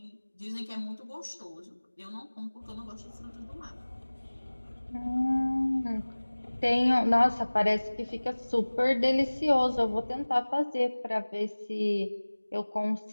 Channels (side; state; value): both; inverted; correlation -1.00